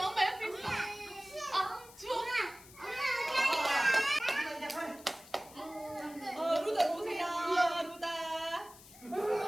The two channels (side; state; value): left; noise; hiss, 20 dB below the sound